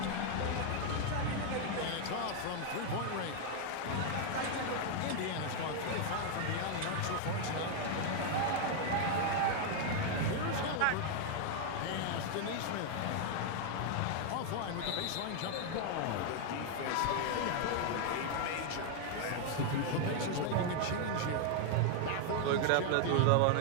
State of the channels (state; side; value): different; both; correlation 0.00